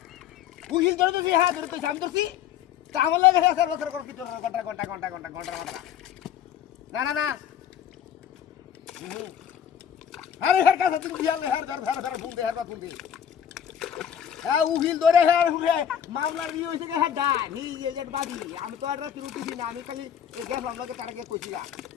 উহিল ধরে তুই হ্যাঁ ধরে তুই আমি ধরছি তা আমার লাগে স্যার বছর করে কি তোর ঘন্টা না না না আরে হের কাছে তুমি দিয়াল হের ধর ফুল দে হের বা ফুল দে হ্যাঁ উহিল ধরে হের মামলার ই হইছে কে হেডা নি এজেন্ট বাদি আমি তো আর রাতে উঠিছি না আমি খালি গেলাম লাগে তার আগে কইছি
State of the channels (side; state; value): right; quieter; 9.3 dB